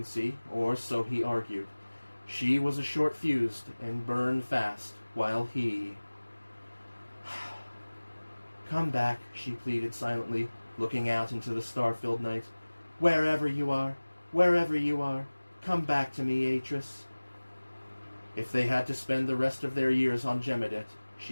or so he argued. She was a short-fused and burned fast, while he... Come back, she pleaded silently, looking out into the star-filled night. Wherever you are, come back to me, Atris. If they had to spend the rest of their years on Gemidet,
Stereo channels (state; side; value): inverted; both; correlation -1.00